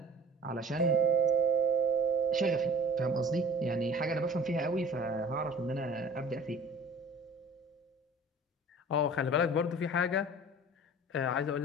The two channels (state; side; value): normal; both; correlation 0.44